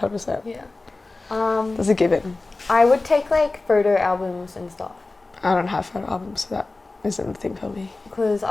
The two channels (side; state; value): right; quieter; 3.3 dB